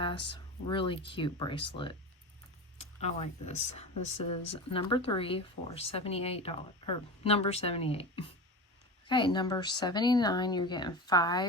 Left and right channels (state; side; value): normal; both; correlation 0.27